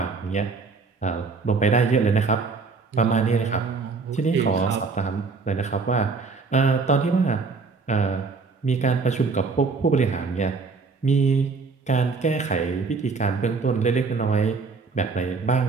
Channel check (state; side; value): quieter; left; 4.4 dB